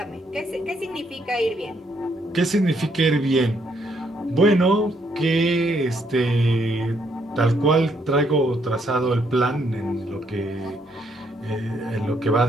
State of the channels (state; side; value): normal; both; correlation 0.72